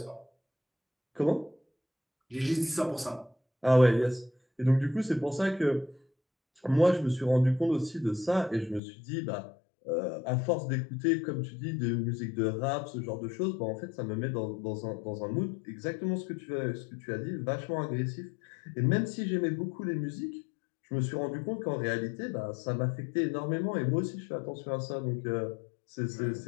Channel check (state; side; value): drops out; right; at 8.8 s